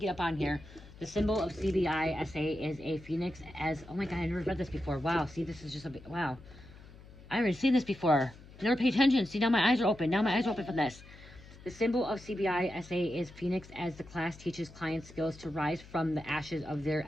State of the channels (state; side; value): noise; left; hum, 19 dB below the sound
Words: up on here. The symbol of CBISA is a phoenix as, oh my god, I never read this before. Wow, see, this is just a bit, wow. I haven't seen this before. Never pay attention. See, now my eyes are open. Now my eyes are open from this. The symbol of CBISA is phoenix as the class teaches clients skills to rise from the ashes of their